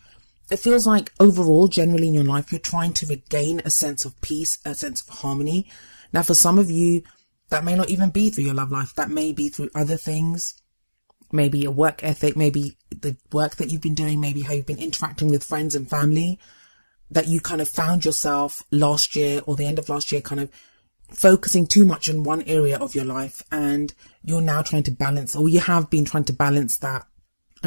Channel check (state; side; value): inverted; both; correlation -1.00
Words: It feels like overall, generally in your life, you're trying to regain a sense of peace, a sense of harmony. Now, for some of you, that may not even be through your love life. That may be through other things. Maybe your work ethic, maybe the work that you've been doing, maybe how you've been interacting with friends and family, that you kind of found yourself last year or the end of last year kind of focusing too much on one area of your life, and you're now trying to balance, or you have been trying to balance that